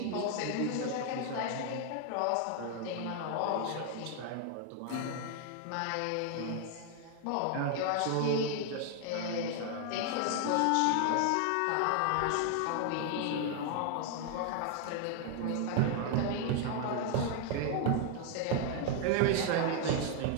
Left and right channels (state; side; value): different; both; correlation 0.00